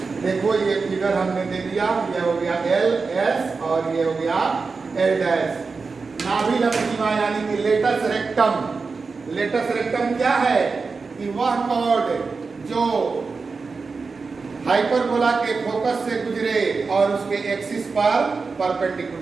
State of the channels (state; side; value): quieter; left; 4.5 dB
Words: देखो ये फिगर हमने दे दिया, ये हो गया LS और ये हो गया L डैश। नाभिलंब सीमा यानी कि लेटस रेक्टम। लेटस रेक्टम क्या है कि वह कॉर्ड जो हाइपरबोला के फोकस से गुजरे और उसके एक्सिस पर